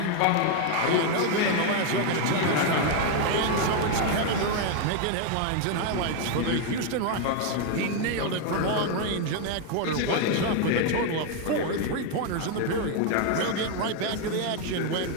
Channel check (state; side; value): different; both; correlation 0.01